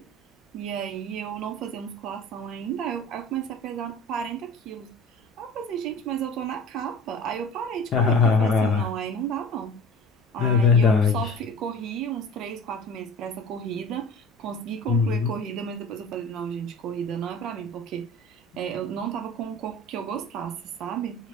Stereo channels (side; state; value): both; normal; correlation 0.40